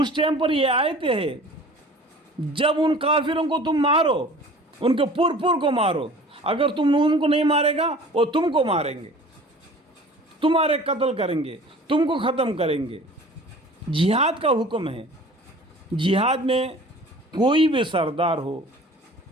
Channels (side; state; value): both; normal; correlation 0.45